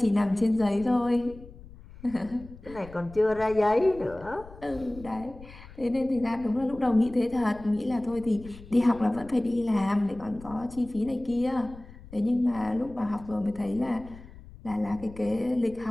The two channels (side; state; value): left; noise; rumble, 18 dB below the sound